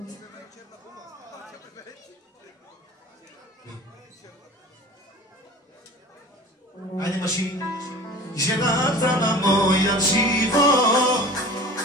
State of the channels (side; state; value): both; normal; correlation 0.40